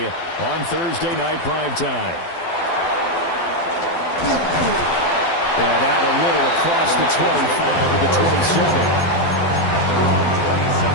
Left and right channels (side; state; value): right; late; 12 ms